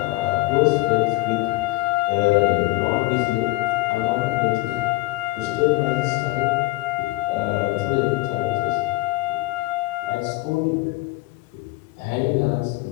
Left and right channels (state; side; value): quieter; right; 21.4 dB